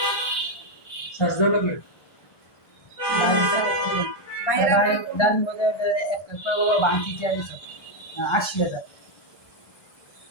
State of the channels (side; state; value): right; late; 1.3 ms